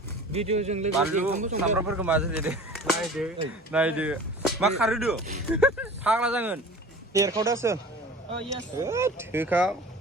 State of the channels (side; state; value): both; normal; correlation 0.41